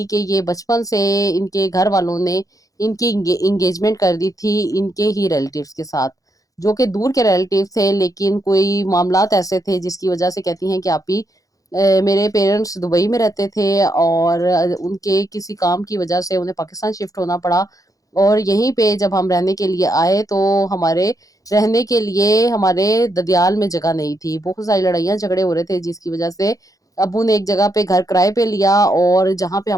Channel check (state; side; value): late; right; 0.17 ms